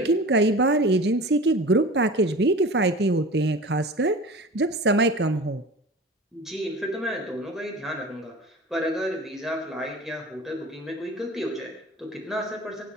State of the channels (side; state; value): both; normal; correlation 0.36